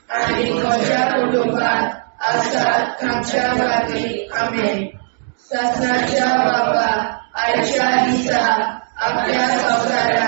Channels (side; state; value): left; silent; digital silence